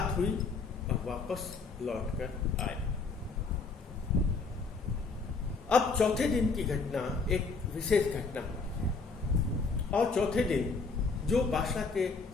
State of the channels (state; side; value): quieter; right; 4.3 dB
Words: हुई और वापस लौटकर आए। अब चौथे दिन की घटना एक विशेष घटना हुई और चौथे दिन जो बादशाह के